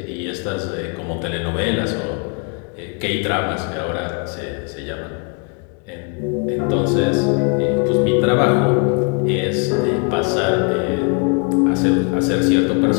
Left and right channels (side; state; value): right; quieter; 34.0 dB